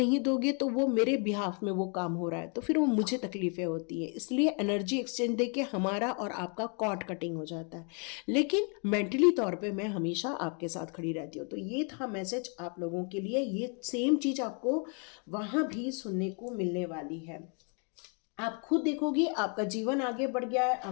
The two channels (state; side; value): quieter; right; 38.2 dB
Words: दोगे तो वो मेरे बिहाफ में वो काम हो रहा है, तो फिर वो मुझे तकलीफें होती है। इसलिए एनर्जी एक्सचेंज देके हमारा और आपका कॉर्ड कटिंग हो जाता है। लेकिन मेंटली तौर पे मैं हमेशा आपके साथ खड़ी रहती हूँ। तो ये था मैसेज आप लोगों के लिए। ये सेम चीज़ आपको वहाँ भी सुनने को मिलने वाली है। आप खुद देखोगे आपका जीवन आगे बढ़ गया है,